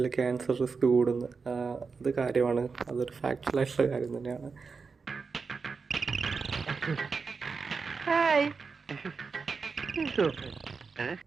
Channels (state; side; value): quieter; left; 4.9 dB